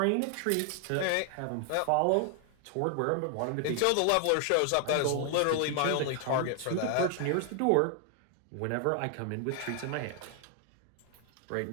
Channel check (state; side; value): different; both; correlation 0.00